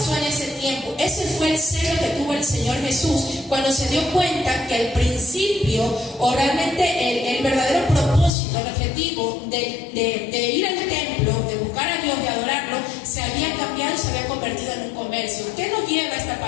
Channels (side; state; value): right; drops out; at 8.3 s